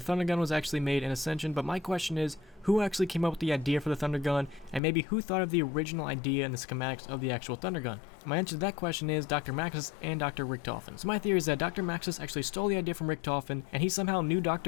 the Thundergun was actually made in Ascension, but my question is, who actually came up with the idea for the Thundergun, and maybe who thought of the original idea and the schematics of the actual Thundergun? My answer to that question is Dr. Maxis and Dr. Richtofen. So my theory is that Dr. Maxis actually stole the idea from Richtofen, and he somehow knew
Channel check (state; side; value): drops out; right; at 4.8 s